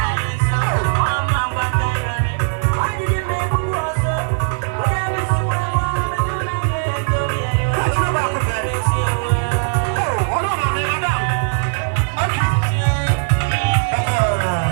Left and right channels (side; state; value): left; silent; digital silence